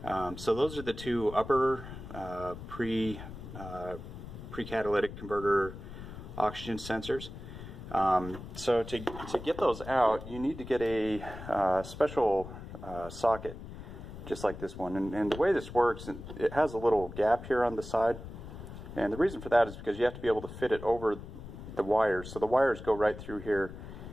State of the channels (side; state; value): left; noise; rumble, 12 dB below the sound